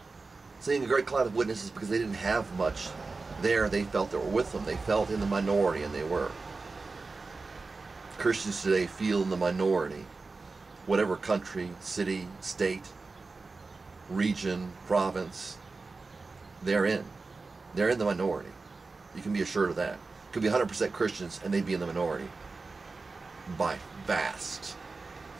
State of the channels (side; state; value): left; quieter; 3.9 dB